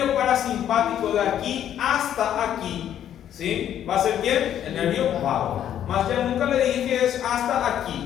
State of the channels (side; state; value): right; quieter; 10.4 dB